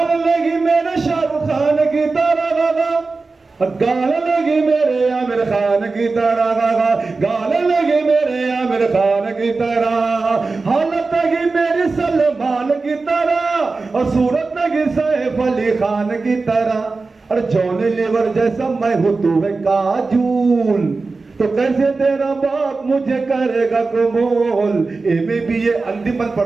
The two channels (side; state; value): left; quieter; 3.9 dB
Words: लगी मेरे शाहरुख खान की तरह गा, गाल लगी मेरे आमिर खान की तरह गा, गाल लगी मेरे आमिर खान की तरह, हालत लगी मेरी सलमान की तरह, और सूरत लगी सैफ अली खान की तरह। और जॉनी लीवर जैसा मैं हूँ तू है काजूल, तो कैसे तेरा बाप मुझे करेगा कबूल। एमे भी ये अंतिम बंद